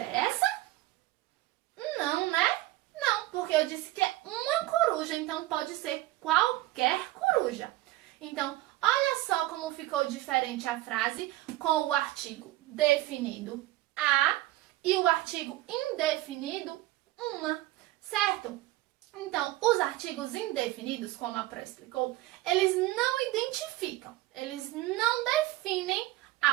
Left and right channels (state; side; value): quieter; left; 16.9 dB